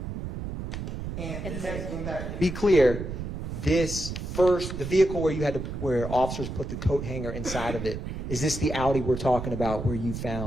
And to be clear, this first, the vehicle where officers put the coat hanger inside of it, is this the Audi we're talking about where you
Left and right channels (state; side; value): noise; right; rumble, 6 dB below the sound